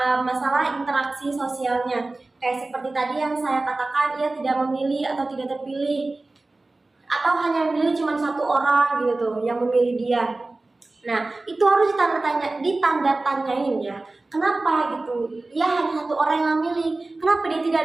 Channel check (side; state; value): left; quieter; 3.1 dB